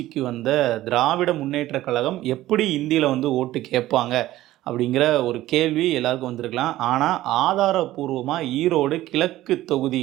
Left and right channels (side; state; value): left; quieter; 15.4 dB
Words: வந்த திராவிட முன்னேற்ற கழகம் எப்படி இந்தியில் ஓட்டு கேட்பாங்க அப்படிங்கிற ஒரு கேள்வி எல்லாருக்கும் வந்திருக்கலாம். ஆனால் ஆதாரபூர்வமாக ஈரோடு கிழக்கு